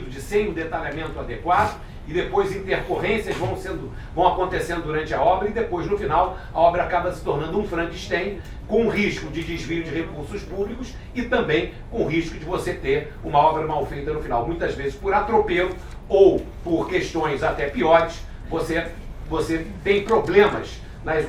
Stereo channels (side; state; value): both; identical; correlation 1.00